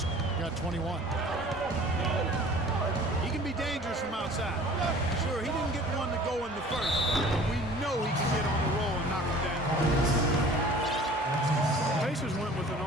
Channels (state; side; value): normal; both; correlation 0.47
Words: got 21. He can be dangerous from outside. Sure, he didn't get one to go in the first, but we know he can get on the roll and knock him down. The Pacers went with an